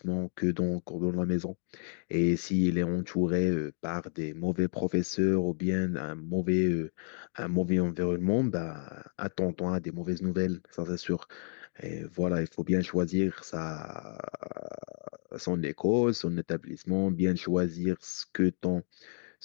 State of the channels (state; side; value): silent; right; 57 dB below the other